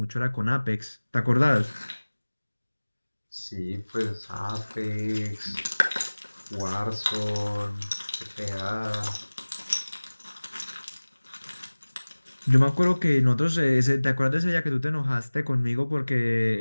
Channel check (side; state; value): both; inverted; correlation -1.00